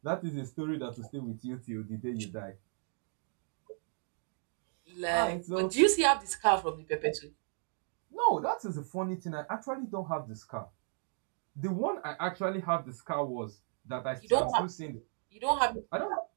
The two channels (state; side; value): silent; left; 55 dB below the other